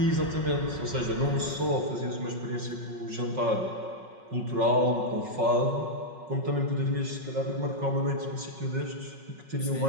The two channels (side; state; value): left; late; 5.4 ms